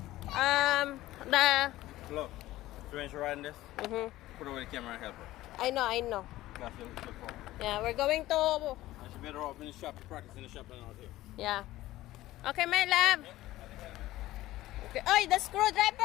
The. Look. So when she's riding this, Mhm. put away the camera and help her. I know, I know. That's your phone. Yeah, we're going to. And she better off in the shop to practice in the shop than out here. Yeah. Okay, my love. Okay. Oh, the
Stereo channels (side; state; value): right; quieter; 16.2 dB